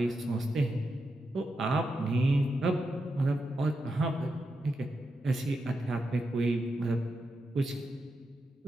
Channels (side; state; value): both; normal; correlation 0.86